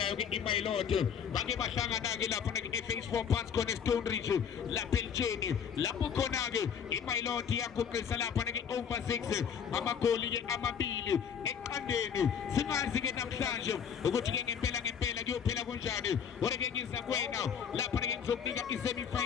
ke iMailot bake bahlangana ke lapho ke Phase 4 phansi khona eStone Ridge lapha eLtsheni lapho khona ke iMailot yaguqisa lapho ke over 6 amagoli ke amabili eqandeni singazi ke namhlanje ukuthi ke ngempela kuyophela kanjani ore ke ngiza kuwena lapho ke ngizokunika isemi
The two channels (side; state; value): right; quieter; 7.6 dB